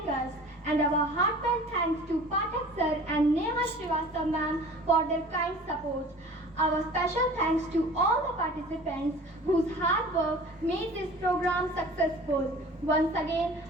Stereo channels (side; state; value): both; normal; correlation 0.44